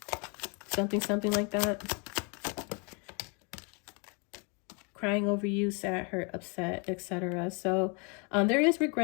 something like that. Crying over you, sad, hurt, upset, etc. So there is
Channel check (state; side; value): quieter; right; 34.3 dB